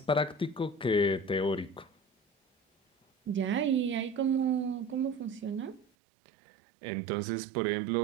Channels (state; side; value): drops out; left; at 5.9 s